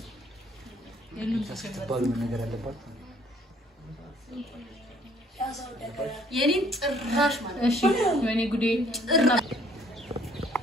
የሉም ተባሉ ነገር አለባት። የኔን ጭራሽ ማለት እሺ ወይኔ ጉዴ ጭራ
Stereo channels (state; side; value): normal; both; correlation 0.60